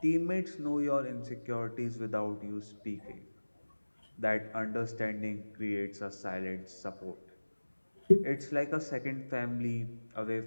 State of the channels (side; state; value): both; inverted; correlation -1.00